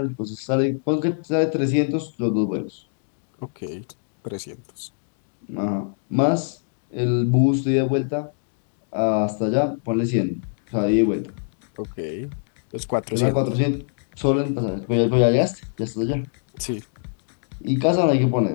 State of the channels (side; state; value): right; silent; digital silence